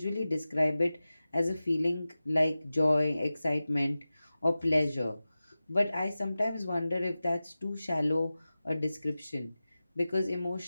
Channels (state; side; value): inverted; both; correlation -0.96